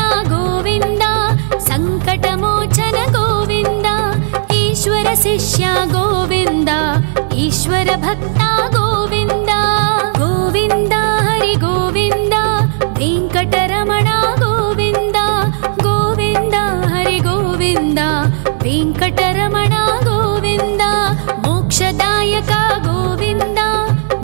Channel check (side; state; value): left; silent; digital silence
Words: ఈశ్వర శిష్య గోవింద ఈశ్వర భక్త గోవింద గోవింద హరి గోవింద వెంకటరమణ గోవింద గోవింద హరి గోవింద వెంకటరమణ గోవింద మోక్షదాయక గోవింద